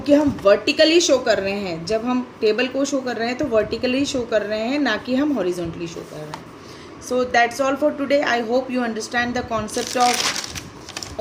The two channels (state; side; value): identical; both; correlation 1.00